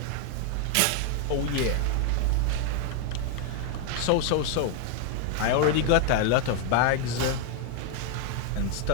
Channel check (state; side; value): different; both; correlation 0.00